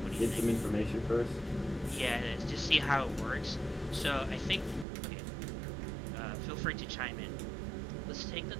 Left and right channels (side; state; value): left; drops out; at 4.9 s